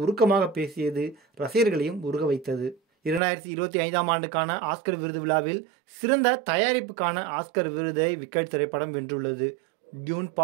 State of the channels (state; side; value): drops out; left; at 3.2 s